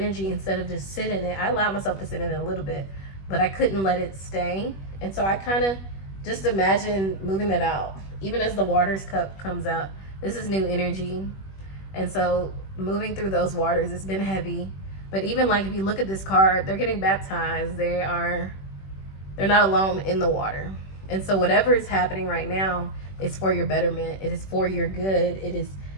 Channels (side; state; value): right; late; 21 ms